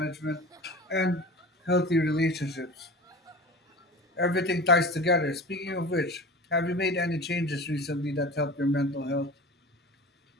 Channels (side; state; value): both; normal; correlation 0.35